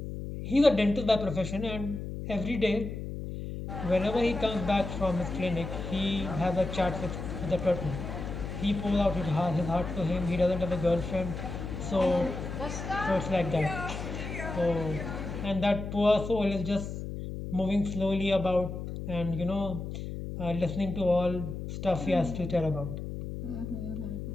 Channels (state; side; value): noise; left; hum, 6 dB below the sound